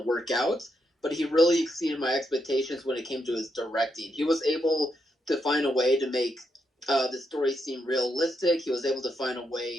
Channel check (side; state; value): both; normal; correlation 0.82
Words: work out, but he really exceeded my expectations when it came to his directing. He was able to find a way to make the story seem realistic. He was able to find a